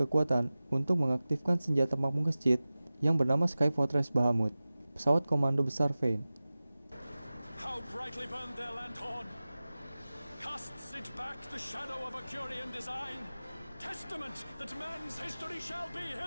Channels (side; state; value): both; inverted; correlation -0.97